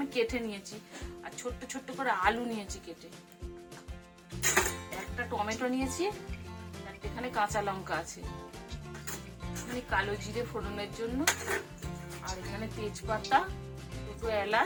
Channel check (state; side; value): identical; both; correlation 1.00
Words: কেটে নিয়েছি। আর ছোট্ট ছোট্ট করে আলু নিয়েছি কেটে। একটা টমেটো নিয়েছি, এখানে কাঁচা লঙ্কা আছে, এখানে কালো জিরে ফোড়নের জন্য, আর এখানে তেজপাতা, দুটো